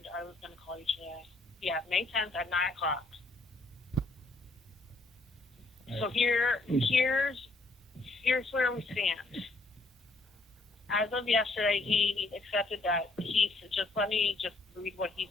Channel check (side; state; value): right; quieter; 3.1 dB